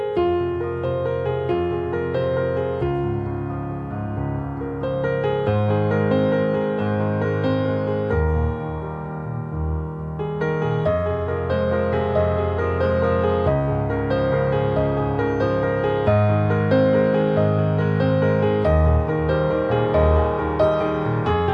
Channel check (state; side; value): identical; both; correlation 1.00